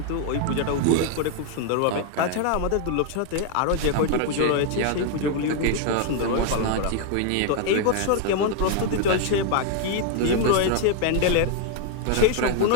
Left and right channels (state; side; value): different; both; correlation 0.00